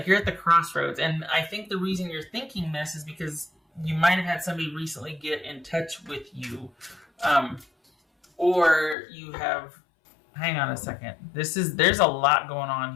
you're at the crossroads, and I think the reason you're thinking this is because you might have had somebody recently get in touch with you, or you have. Hang on a second. There's a lot going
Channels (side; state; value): right; drops out; at 9.0 s